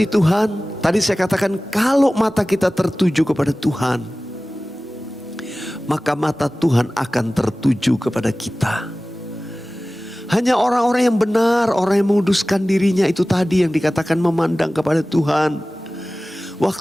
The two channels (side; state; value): both; normal; correlation 0.97